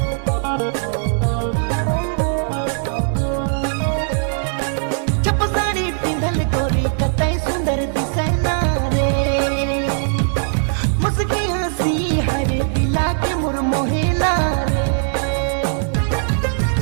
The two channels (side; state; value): left; silent; 66 dB below the other